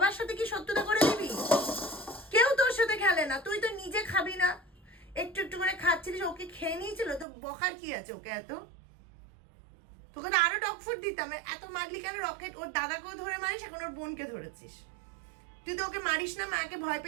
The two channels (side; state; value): left; drops out; at 7.2 s